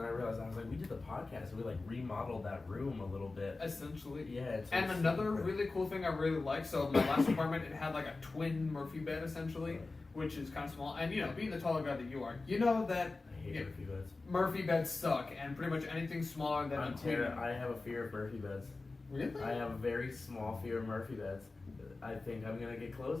I realized I was like, we did the podcast, and we like remodeled that room a little bit. Essentially. Yeah. And another really cool thing I really like, so my last apartment, it had like a twin Murphy bed essentially, which is kind of small. And being the taller guy that you are, you know that I hate Murphy beds. Murphy beds suck, and pretty much anything smaller than a twin. I have a fear of Murphy beds. Really? I have a very small fear of Murphy beds. I think I'm gonna get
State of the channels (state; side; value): quieter; right; 3.5 dB